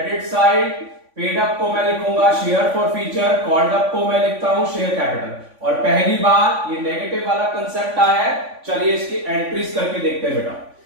साइड। पेड अप को मैं लिखूंगा share for future, called up को मैं लिखता हूं शेयर कैपिटल। और पहली बार ये नेगेटिव वाला कंसेप्ट आया है। चलिए इसकी एंट्रीज करके देखते हैं बेटा।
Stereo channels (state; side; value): late; left; 3.5 ms